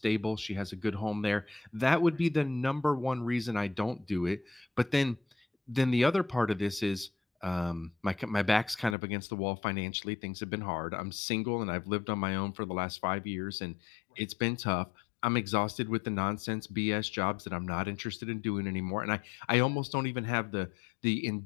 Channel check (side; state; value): right; drops out; at 9.0 s